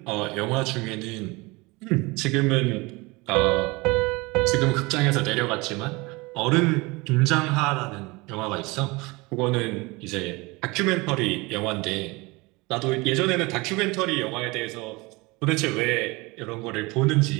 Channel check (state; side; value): quieter; left; 24.6 dB